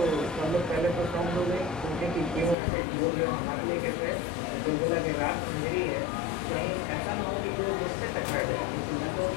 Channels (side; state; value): right; drops out; at 2.6 s